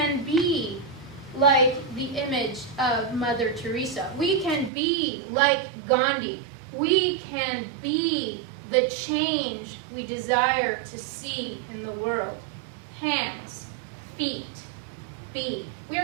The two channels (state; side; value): drops out; left; at 4.7 s